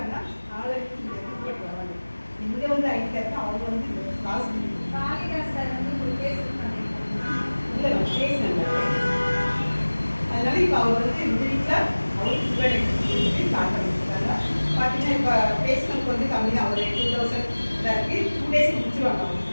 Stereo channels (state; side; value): inverted; both; correlation -1.00